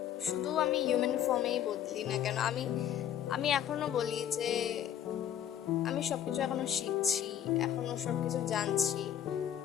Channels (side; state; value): right; quieter; 10.2 dB